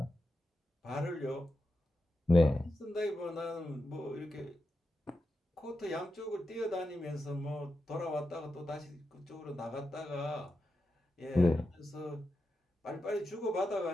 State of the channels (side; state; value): both; normal; correlation 0.89